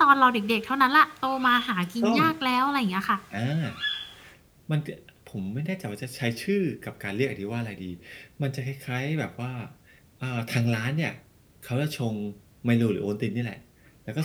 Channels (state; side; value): identical; both; correlation 1.00